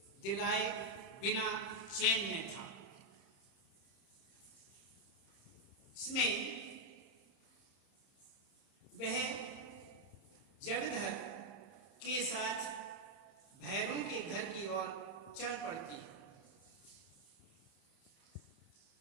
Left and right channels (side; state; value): right; late; 30 ms